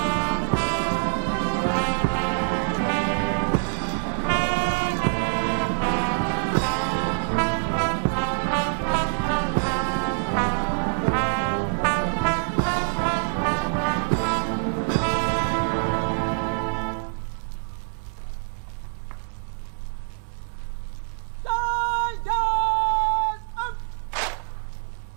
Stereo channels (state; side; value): silent; left; 55 dB below the other